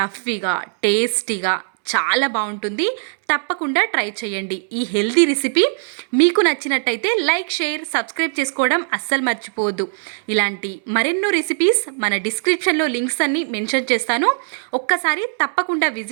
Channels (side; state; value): left; silent; 66 dB below the other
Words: టేస్టీగా చాలా బాగుంటుంది. తప్పకుండా ట్రై చేయండి. ఈ హెల్తీ రెసిపీ మీకు నచ్చినట్టయితే లైక్, షేర్, సబ్స్క్రైబ్ చేసుకోవడం అస్సలు మర్చిపోవద్దు. ఇలాంటి మరెన్నో రెసిపీస్ మన డిస్క్రిప్షన్లో లింక్స్ అన్ని మెన్షన్ చేస్తాను. ఒక్కసారి తప్పకుండా